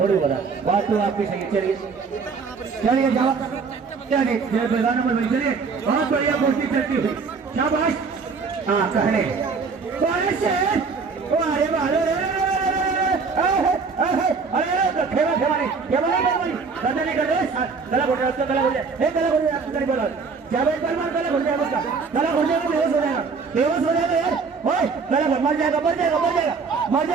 बता, बात तो आपकी सही। चलिए चलिए जाओ, चलिए चलिए बहुत बढ़िया कुश्ती चलती हुई, शाबाश। हाँ कहने अरे बालो अरे खेवा खेवा नहीं, खेवा नहीं, गला नहीं कर रहे, गला घुट रहा है उसका, गला घुट जाए, गला घुट जाए, आपको बोला जावेद परमार, गला घुट जाएगा उसका, गला घुट जाएगा, बेहोश हो जाएगा, बेहोश हो जाएगा यार, ओए गला घुट, मर जाएगा, मर जाएगा, मर जाएगा, मर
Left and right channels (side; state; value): left; quieter; 5.0 dB